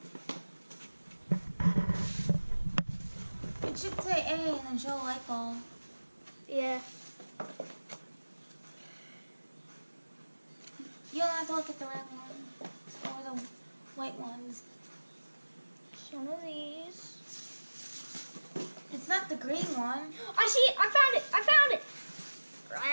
It should say A and then show a light bulb. Yeah. You don't have to look at the red one or the white ones. It's one of these. It's not the green one. I see it. I found it. I found it.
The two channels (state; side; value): inverted; both; correlation -1.00